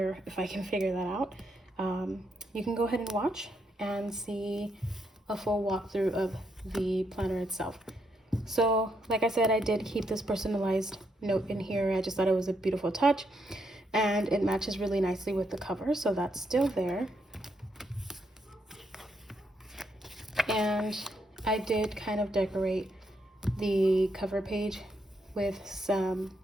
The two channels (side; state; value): both; normal; correlation 0.78